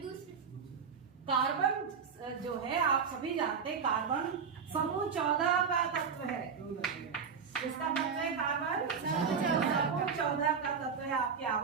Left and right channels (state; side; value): quieter; left; 6.1 dB